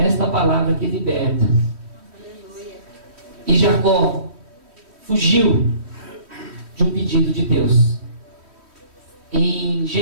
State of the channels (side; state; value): left; late; 3.1 ms